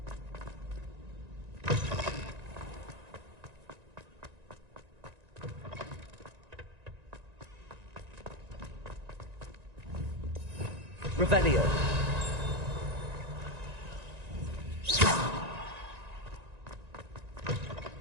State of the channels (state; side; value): late; left; 1.9 ms